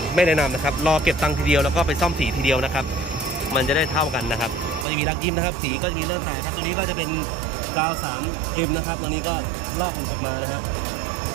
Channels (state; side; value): drops out; left; at 4.9 s